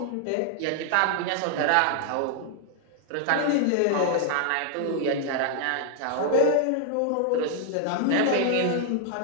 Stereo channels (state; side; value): different; both; correlation 0.00